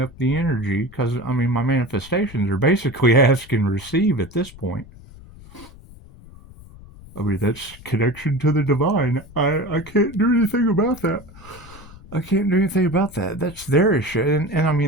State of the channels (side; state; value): left; noise; rumble, 20 dB below the sound